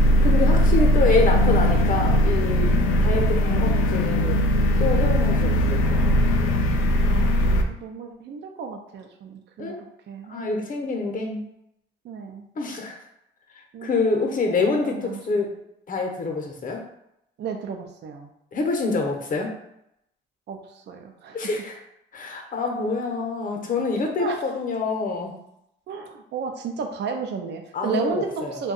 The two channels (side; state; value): both; normal; correlation 0.45